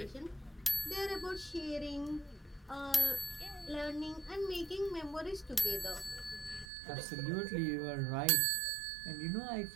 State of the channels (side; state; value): left; drops out; at 6.7 s